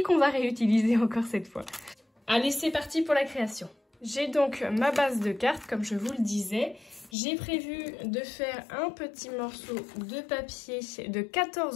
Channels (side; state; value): right; drops out; at 7.1 s